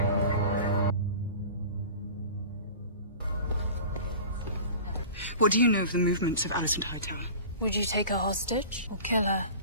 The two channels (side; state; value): both; inverted; correlation -0.38